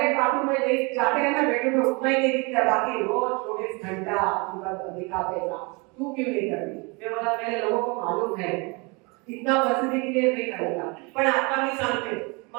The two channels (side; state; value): left; quieter; 29.2 dB